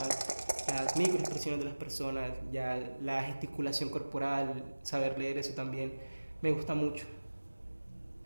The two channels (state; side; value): inverted; both; correlation -1.00